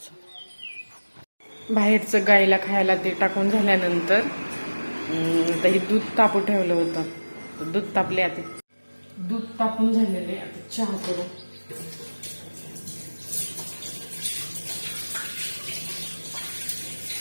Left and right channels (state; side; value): inverted; both; correlation -1.00